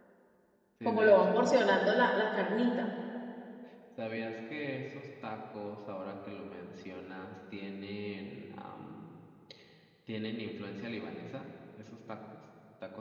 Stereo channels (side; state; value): both; identical; correlation 1.00